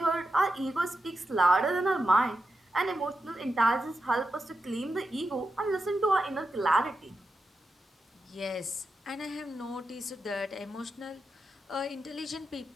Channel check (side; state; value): both; normal; correlation 0.88